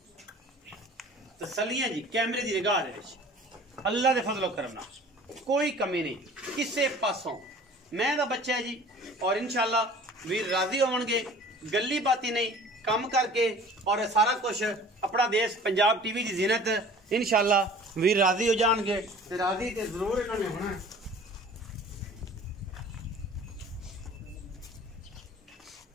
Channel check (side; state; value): both; normal; correlation 0.47